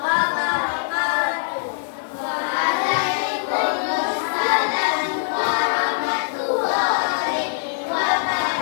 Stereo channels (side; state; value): right; silent; 64 dB below the other